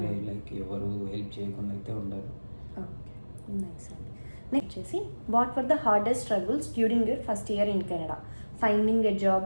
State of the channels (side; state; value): both; inverted; correlation -1.00